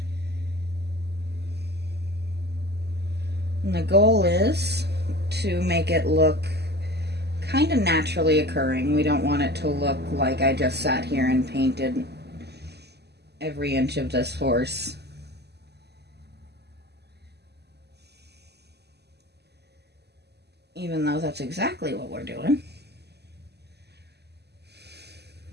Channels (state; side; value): late; left; 0.49 ms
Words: the goal is to make it look kind of naturally occurring. We don't want it to look like I just sat here and painted every inch of this horse. Even though that's exactly what we're doing.